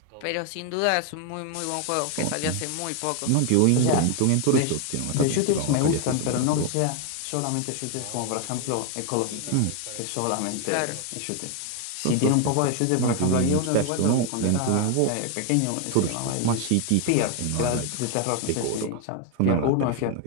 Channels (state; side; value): different; both; correlation 0.01